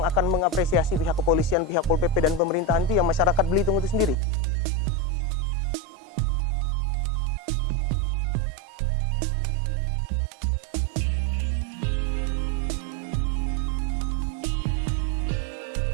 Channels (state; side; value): drops out; left; at 4.2 s